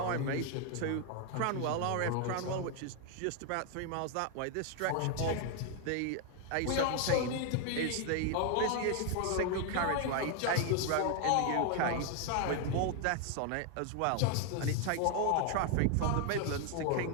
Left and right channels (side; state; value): both; different; correlation 0.00